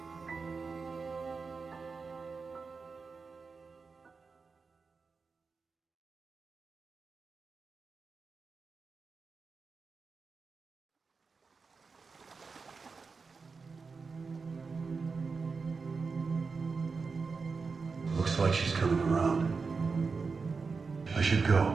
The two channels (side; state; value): left; quieter; 4.7 dB